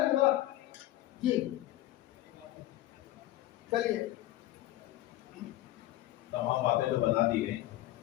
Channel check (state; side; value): quieter; right; 15.4 dB